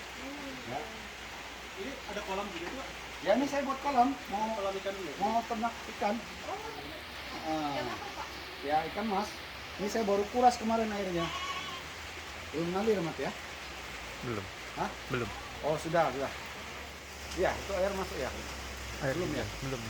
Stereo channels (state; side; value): identical; both; correlation 1.00